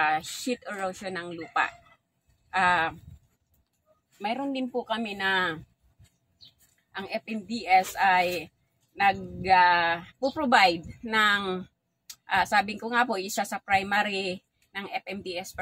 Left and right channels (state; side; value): identical; both; correlation 1.00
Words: erosion ng lupa. Mayroon din po kami na ang FMDS ay nag-provide ng sabi ko nga po, isa sa primary ng FMDS